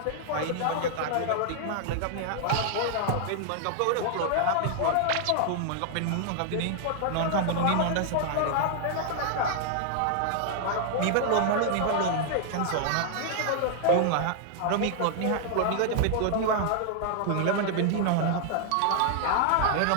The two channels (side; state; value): both; different; correlation 0.00